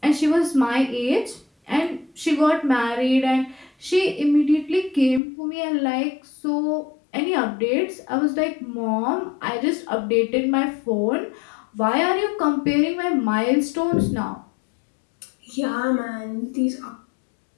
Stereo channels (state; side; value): drops out; right; at 5.2 s